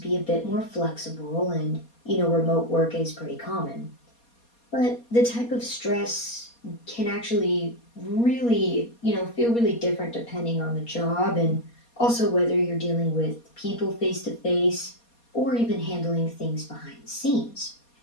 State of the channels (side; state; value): right; late; 4.2 ms